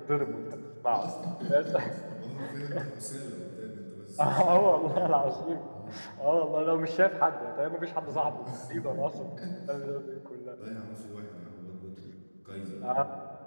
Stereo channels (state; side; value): inverted; both; correlation -1.00